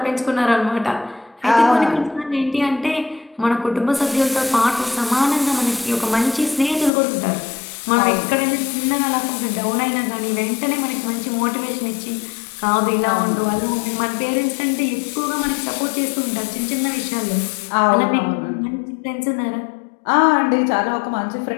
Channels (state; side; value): drops out; right; at 6.9 s